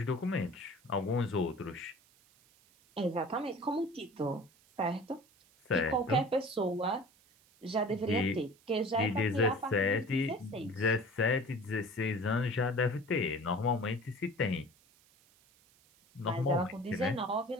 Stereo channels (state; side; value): noise; right; hiss, 30 dB below the sound